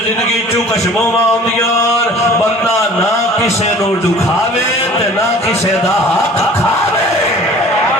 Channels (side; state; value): both; normal; correlation 0.47